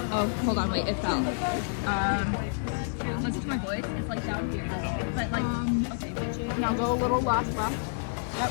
Oh, hold on, wait, it fell. Listen to my voice. It's like down here. But like, okay, now go a little left. Yep,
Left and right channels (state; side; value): silent; right; digital silence